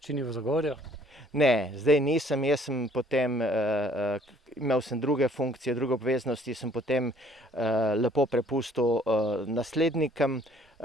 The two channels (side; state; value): both; normal; correlation 0.59